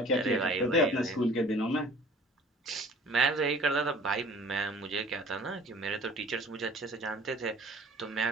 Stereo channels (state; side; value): normal; both; correlation 0.49